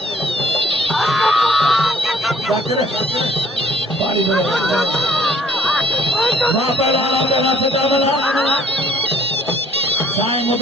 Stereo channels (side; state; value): both; normal; correlation 0.61